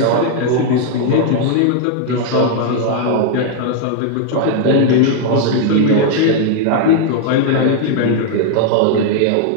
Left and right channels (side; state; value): both; different; correlation 0.00